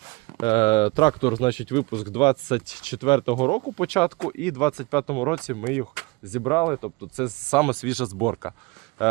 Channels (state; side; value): quieter; left; 25.2 dB